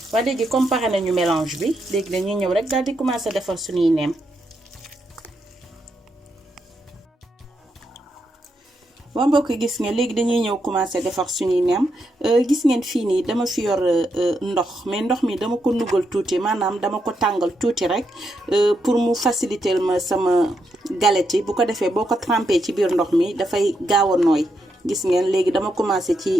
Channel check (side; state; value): both; normal; correlation 0.81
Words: waa léegi comme pare nañu mélange bi léegi dañuy ñëw rek daal di commencer defar suñuy neem. waa mbokk gis ngeen léegi dañuy ñëw commencer defar suñuy neem. gis ngeen fii nii dama fi yor ndox, mais ndox mi dama ko nugal tuuti, maanaam dama ko tàngal tuuti rek pour mu faciliter ma sama galette yi. bu ko defee boo ko trempé ci biir ndox mi dafay gaaw a nooy. gis ngeen léegi dama commencer